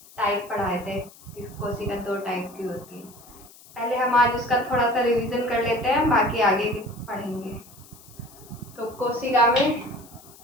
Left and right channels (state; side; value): noise; left; hiss, 22 dB below the sound